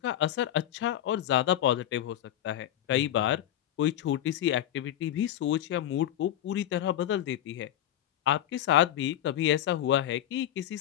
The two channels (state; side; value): quieter; right; 11.9 dB